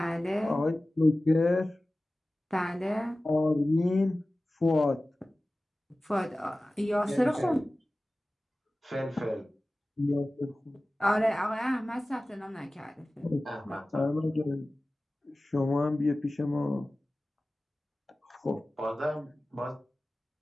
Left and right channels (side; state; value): both; normal; correlation 0.97